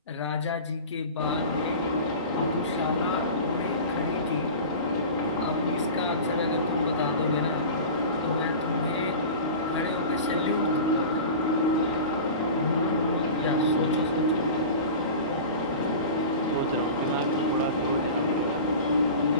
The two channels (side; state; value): both; inverted; correlation -0.34